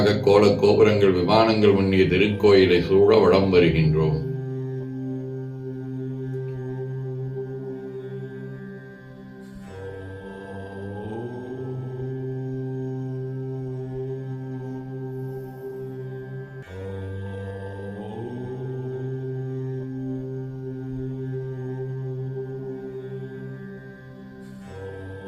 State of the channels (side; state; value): both; identical; correlation 1.00